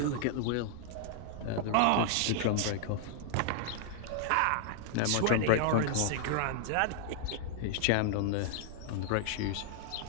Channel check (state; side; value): different; both; correlation 0.00